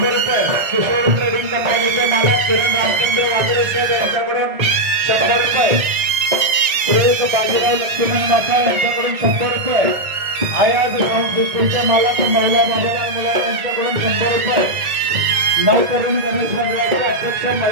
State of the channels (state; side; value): late; left; 1.5 ms